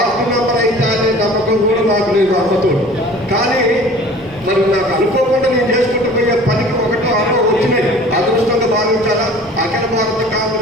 మెంబర్ అయితే అనే నమ్మకం కూడా మాకు లేదు అమ్మతోడు. కానీ మరి నాకు అనుకోకుండా నేను చేసుకుంటూ పోయే పనికి 1-6 వచ్చినాయి. అదృష్టంగా భావించాలా. అఖిల భారత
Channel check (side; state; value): both; normal; correlation 0.45